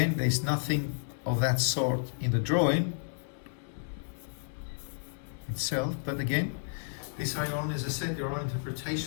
there's nothing of that sort in the drawing itself, but again, these are your own, as I said, your own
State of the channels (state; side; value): silent; right; 57 dB below the other